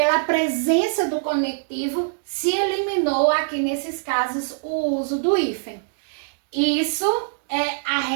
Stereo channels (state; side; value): silent; left; digital silence